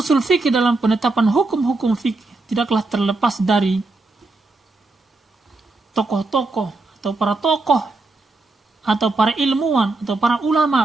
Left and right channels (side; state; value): left; quieter; 3.3 dB